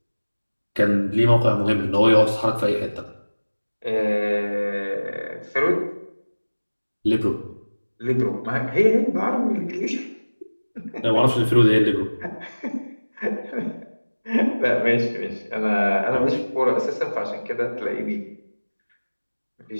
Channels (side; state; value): both; inverted; correlation -1.00